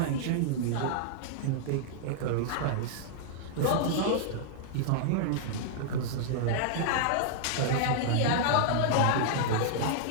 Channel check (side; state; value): both; different; correlation -0.01